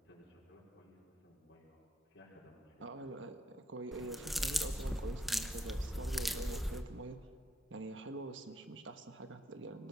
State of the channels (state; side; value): normal; both; correlation 0.75